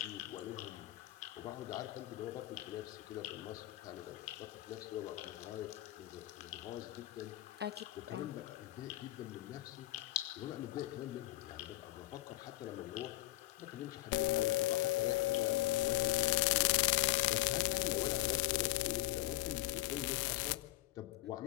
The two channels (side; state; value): right; quieter; 17.7 dB